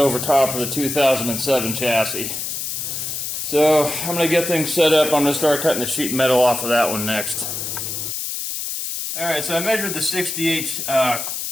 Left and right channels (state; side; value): noise; left; hiss, 4 dB below the sound